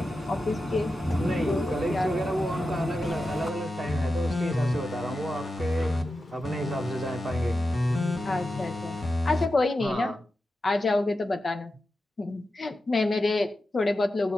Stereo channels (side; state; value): both; normal; correlation 0.91